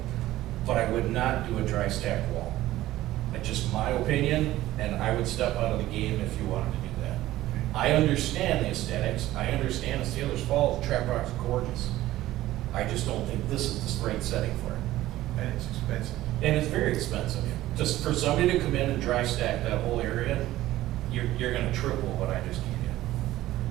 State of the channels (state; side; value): quieter; left; 15.4 dB